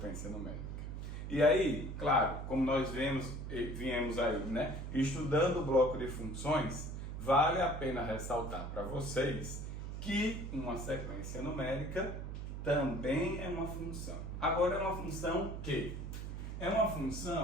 numérica. E aí, claro, como nós viemos aí, né, estudando o bloco de funções, vale a pena ressaltar para vocês que uma sequência numérica também é uma função. Agora, é uma função que? É uma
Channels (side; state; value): right; noise; hum, 6 dB below the sound